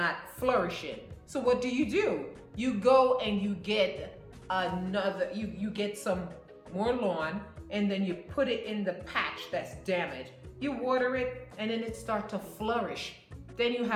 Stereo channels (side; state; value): both; identical; correlation 1.00